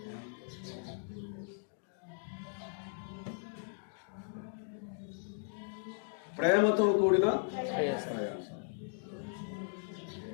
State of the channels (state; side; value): silent; right; digital silence